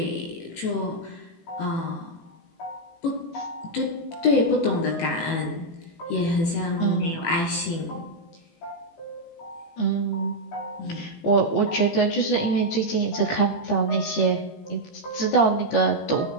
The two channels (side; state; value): right; late; 18 ms